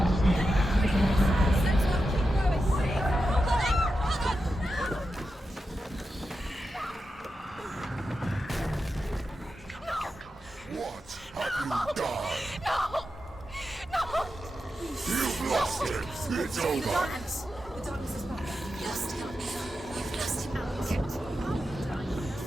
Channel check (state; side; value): normal; both; correlation 0.89